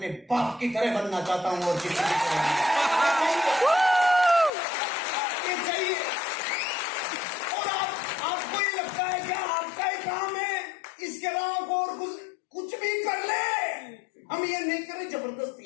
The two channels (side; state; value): right; drops out; at 4.5 s